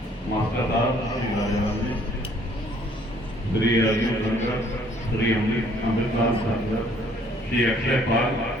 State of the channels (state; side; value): normal; both; correlation 0.61